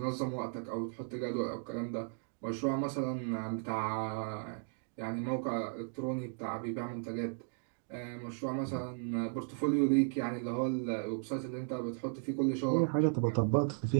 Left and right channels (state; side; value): silent; left; 54 dB below the other